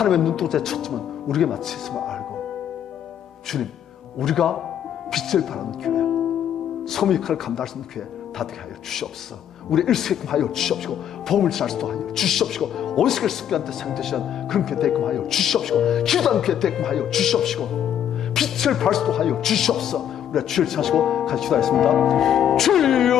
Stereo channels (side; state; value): right; quieter; 9.8 dB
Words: 눈동자의 초점은 우리에게 맞춰 있음을 알고 주님, 우리가 빛을 발하는 교회, 소명 역할을 감당할 수 있는 교회 다 되게 하여 주시옵소서. 우리 일수게끔 하여 주시옵시고 복음을 전할 수도 하여 주시옵시고 원수를 습기한테 상대시한 그런 교회 되게끔 하여 주시옵시고 기도하는 교회 되게끔 하여 주시옵시고 빛을 발할 수도 하여 주시옵소서. 우리가 주를 찾으시고 같이 기도하겠습니다.